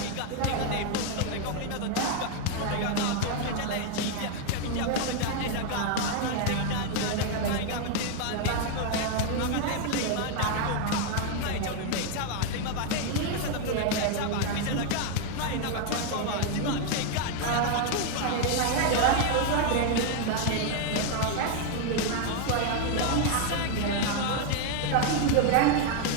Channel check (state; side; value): different; both; correlation 0.01